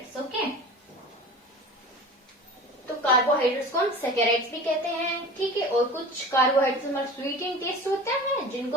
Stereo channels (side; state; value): both; normal; correlation 0.37